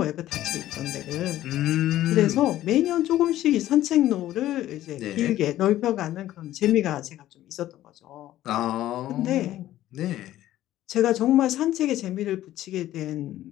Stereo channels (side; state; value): right; quieter; 13.8 dB